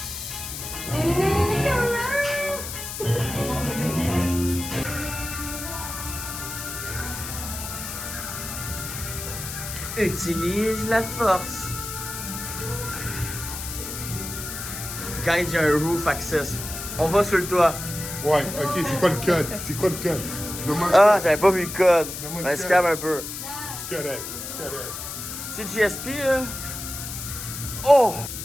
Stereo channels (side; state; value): left; noise; hiss, 7 dB below the sound